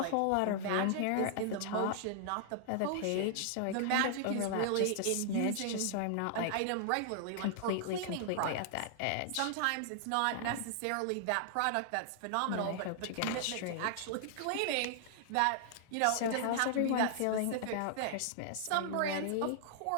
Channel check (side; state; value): both; different; correlation -0.01